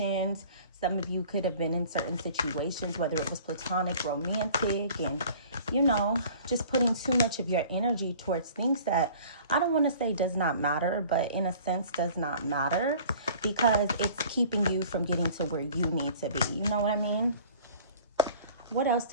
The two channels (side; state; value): both; inverted; correlation -0.48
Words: Some of you could have been in certain situations, whether it was platonic, romantic, and, just putting too much of your energy towards things that I don't want to say does not matter, but in a sense does not matter because it's keeping you from getting to where you need to be. You know what I mean? What else